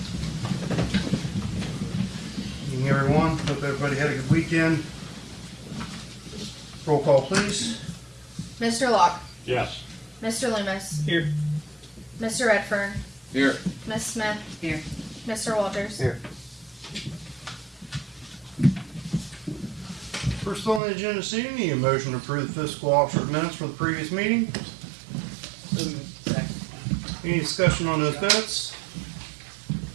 Good evening, everyone. Hope everybody had a good weekend. Roll call, please. Mr. Locke. Yes. Mr. Loomis. Here. Mr. Redfern. Here. Ms. Smith. Here. Mr. Walters. Here. First on the agenda this evening, need a motion to approve the fiscal officer minutes for the previous meeting. Second. Any discussion on those minutes?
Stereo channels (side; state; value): left; drops out; at 20.8 s